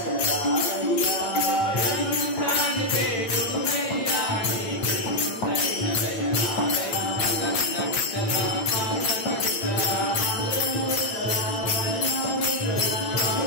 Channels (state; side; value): late; right; 9.0 ms